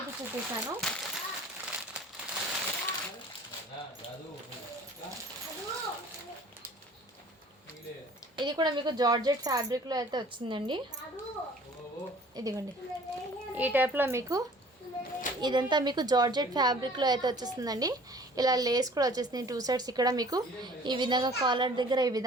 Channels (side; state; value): both; normal; correlation 0.50